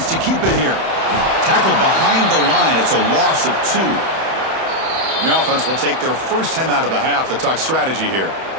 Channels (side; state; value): left; late; 31 ms